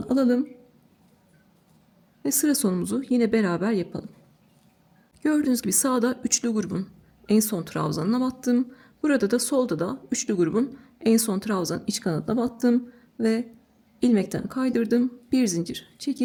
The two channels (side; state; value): both; identical; correlation 1.00